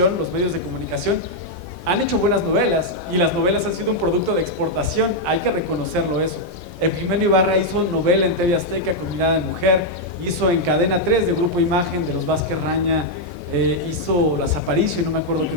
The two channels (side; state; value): right; late; 1.5 ms